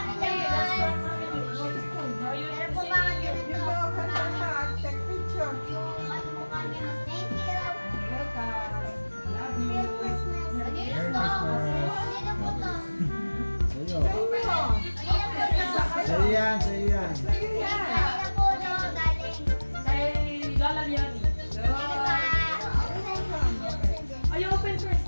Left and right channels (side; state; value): both; inverted; correlation -1.00